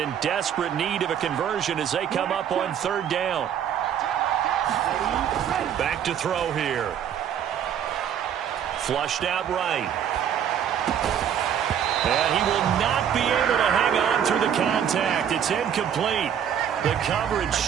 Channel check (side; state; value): left; quieter; 9.0 dB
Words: desperate need of a conversion as they come up on third down. Back to throw here. Flushed out right. And he will not be able to hang on through the contact. It's incomplete. The coverage